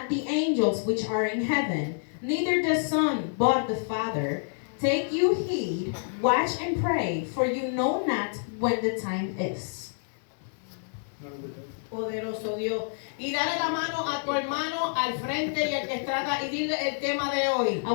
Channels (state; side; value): silent; right; digital silence